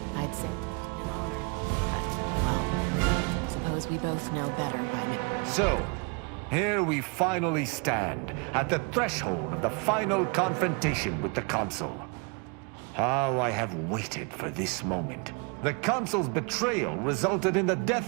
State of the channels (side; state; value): left; quieter; 33.1 dB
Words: I'd say it's been an honor. both know better by now. So, here we finally stand, at the threshold of the final confrontation with the Consul. How I have waited for this moment. The Consul's betrayal resulted in the